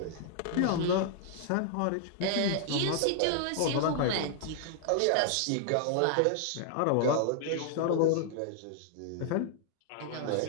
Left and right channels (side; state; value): both; different; correlation -0.01